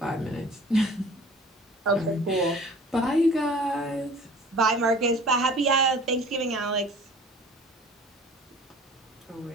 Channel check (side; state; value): both; normal; correlation 0.47